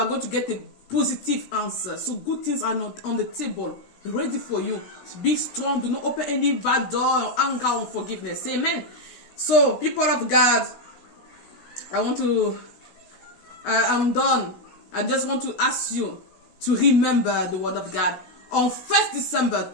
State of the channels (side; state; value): right; late; 16 ms